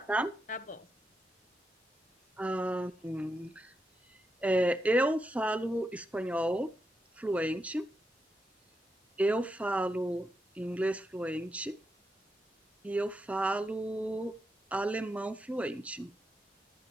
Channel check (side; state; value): both; normal; correlation 0.85